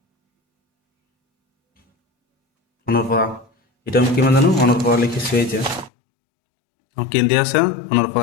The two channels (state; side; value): drops out; right; at 5.9 s